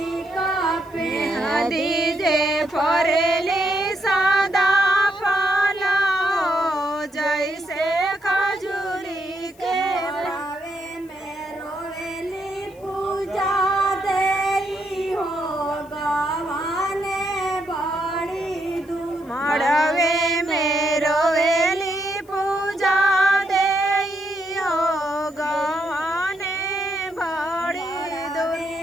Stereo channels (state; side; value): noise; left; hiss, 29 dB below the sound